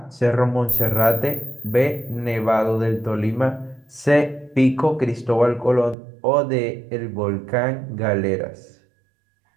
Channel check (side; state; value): left; drops out; at 6.0 s